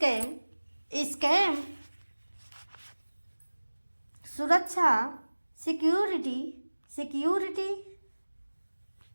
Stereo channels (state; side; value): inverted; both; correlation -1.00